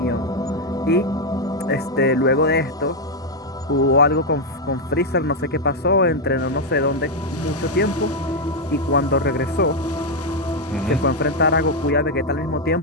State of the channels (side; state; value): both; normal; correlation 0.02